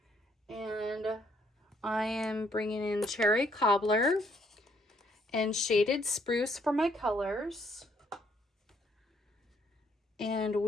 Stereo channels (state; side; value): normal; both; correlation 0.68